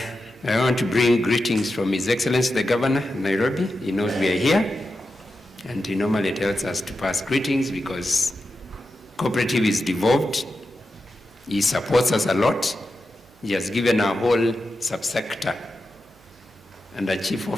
want to bring greetings from His Excellency the Governor of Nairobi. He knows we are here, and he normally tells us to pass greetings because cooperative is devolved. He supports us a lot. He has given our whole subsector and a chief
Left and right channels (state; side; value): noise; right; hum, 29 dB below the sound